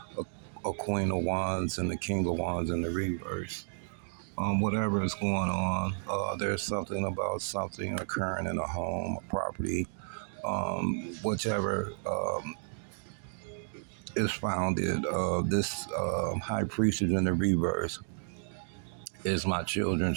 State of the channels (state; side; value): silent; left; digital silence